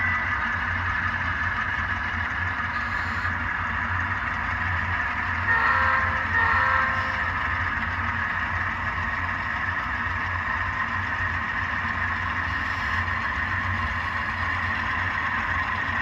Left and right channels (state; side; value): identical; both; correlation 1.00